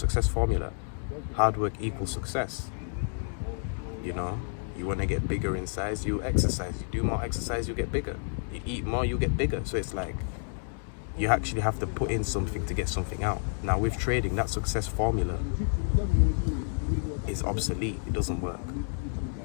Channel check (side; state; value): right; silent; digital silence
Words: formula. Hard work equals success. You know, you want to get bigger in size, you exercise. You do more exercise, you get bigger. You eat more, you get bigger. So it's like, you actually have to put in something to get something out. Now with trading, that success formula is obsolete. It doesn't work.